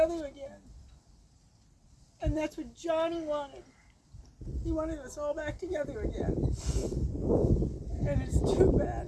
again. And that's what Johnny wanted. He wanted us all back together again. And it's too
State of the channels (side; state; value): both; identical; correlation 1.00